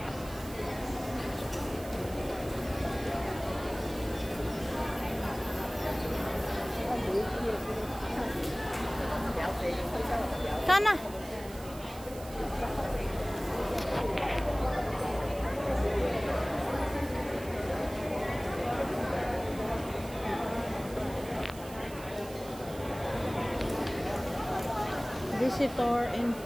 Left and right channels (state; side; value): noise; right; hiss, 17 dB below the sound